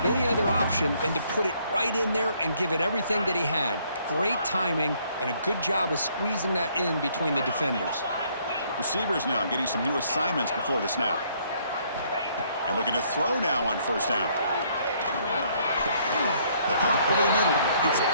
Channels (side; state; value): both; inverted; correlation -0.66